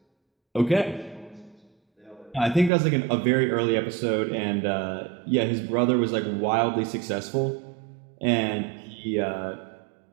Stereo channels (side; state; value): left; drops out; at 2.7 s